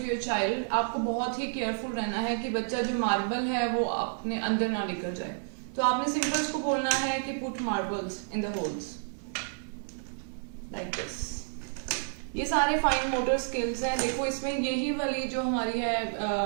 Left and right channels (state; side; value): silent; left; digital silence